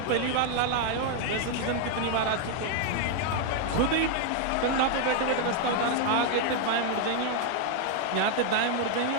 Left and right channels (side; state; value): both; different; correlation 0.00